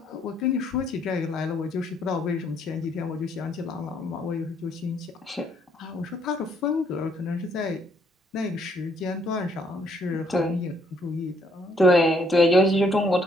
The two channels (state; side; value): normal; both; correlation 0.69